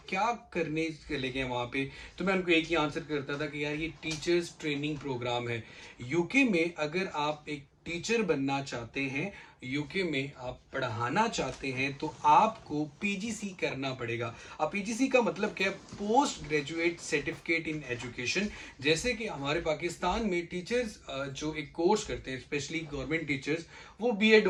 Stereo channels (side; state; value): both; identical; correlation 1.00